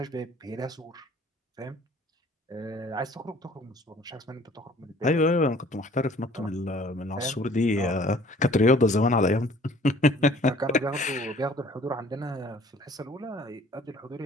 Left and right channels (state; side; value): normal; both; correlation 0.54